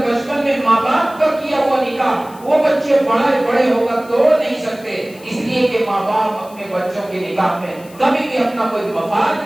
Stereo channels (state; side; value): noise; left; hiss, 24 dB below the sound